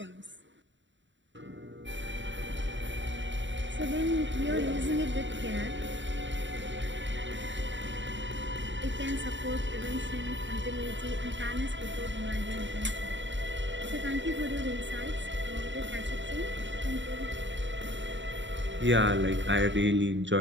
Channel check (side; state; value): left; late; 0.54 ms